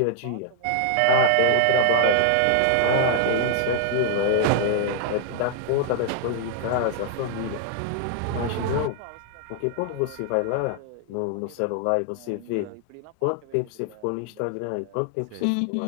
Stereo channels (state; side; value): different; both; correlation 0.00